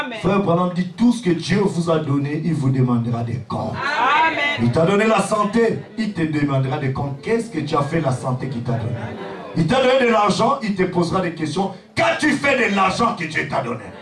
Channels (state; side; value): identical; both; correlation 1.00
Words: Frère Branham dit tout ce que Dieu vous a donné, il vous demandera des comptes. Amen. Il t'a donné la santé, il te demandera des comptes. Qu'est-ce que tu as fait la santé qu'il t'a donné? Il t'a donné de l'argent, il te posera des questions. Qu'as-tu fait de l'argent que Dieu t'a donné?